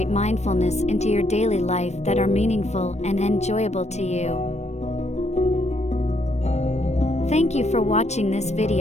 mindfulness into your daily life that are meaningful and enjoyable to you. Thank you for watching this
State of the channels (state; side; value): late; right; 0.32 ms